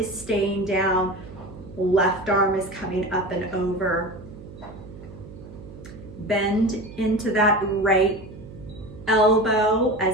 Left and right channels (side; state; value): right; noise; hum, 16 dB below the sound